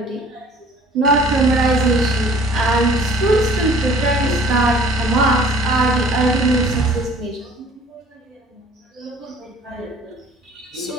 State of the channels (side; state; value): both; normal; correlation 0.51